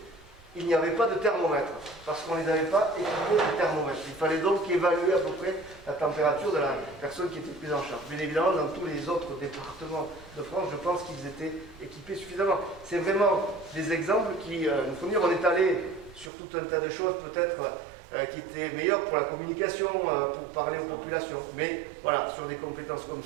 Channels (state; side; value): drops out; left; at 16.3 s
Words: il n'y avait pas de thermomètre, parce qu'on ne les avait pas équipés de thermomètre. Il fallait donc évaluer à peu près la température de la personne qui était prise en charge. Bien évidemment, dans tous les autres départements de France, je pense qu'ils étaient équipés suffisamment. C'est vraiment des exemples qui nous font dire, on est allé sur tout un tas de choses peut-être qui étaient meilleures pour la communication, pour parler aux populations. Mais voilà, sur des compétences comme